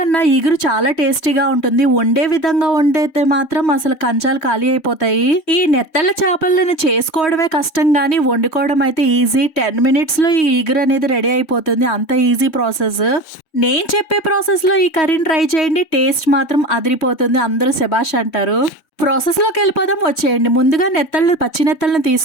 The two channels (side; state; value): right; late; 3.1 ms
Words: ఇగురు చాలా టేస్టీగా ఉంటుంది. వండే విధంగా వండేతే మాత్రం అసలు కంచాలు ఖాళీ అయిపోతాయి. ఈ నెత్తళ్ళ చేపలను చేసుకోవడమే కష్టం గానీ వండుకోవడం అయితే ఈజీ. 10 minutes లో ఈ ఇగురు అనేది రెడీ అయిపోతుంది. అంత ఈజీ ప్రాసెస్. నేను చెప్పే ప్రాసెస్ లో ఈ కర్రీని ట్రై చేయండి. టేస్ట్ మాత్రం అదిరిపోతుంది. అందరూ శబాష్ అంటారు. ప్రాసెస్లోకి వెళ్ళిపోదాం, వచ్చేయండి. ముందుగా పచ్చి నెత్తళ్ళని